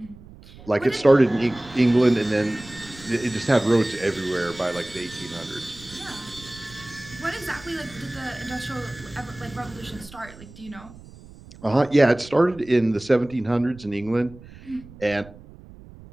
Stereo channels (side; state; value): right; noise; rumble, 20 dB below the sound